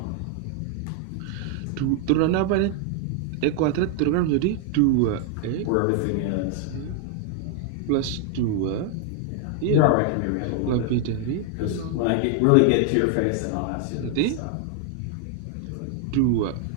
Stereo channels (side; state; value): both; different; correlation 0.00